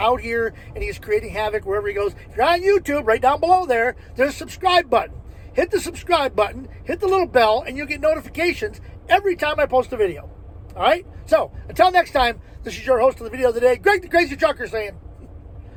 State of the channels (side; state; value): both; identical; correlation 1.00